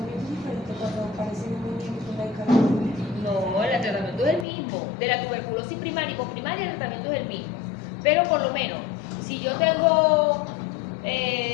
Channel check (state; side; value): drops out; right; at 4.5 s